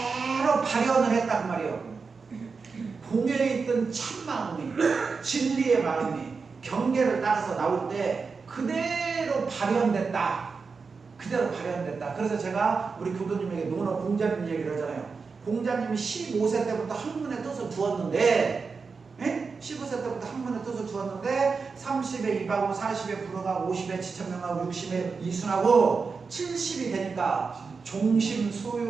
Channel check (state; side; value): quieter; left; 4.9 dB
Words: 발현을 했다 그 말이에요. 공에 있던 참 마음이 진리의 마음이 경계를 따라서 나올 때 그대로 발현됐다. 그래서 제가 우리 교도님에게 노너 공자님 얘기를 하잖아요. 공자님이 15세 때부터 학문의 뜻을 두었는데 15세 때부터 학문의 뜻을 두었는데 30에 입하고 40에 불어가고 50에 지천명하고 60에 이순하고 70이 되니까 종심